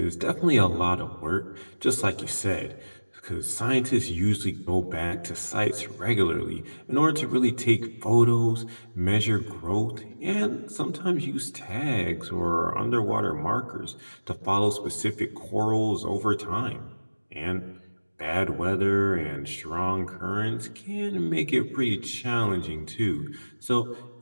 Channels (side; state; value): both; inverted; correlation -1.00